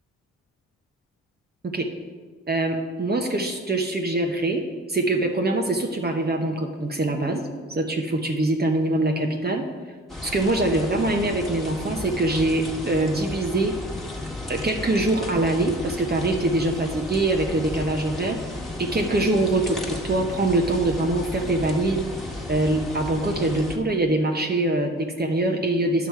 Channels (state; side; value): normal; both; correlation 0.43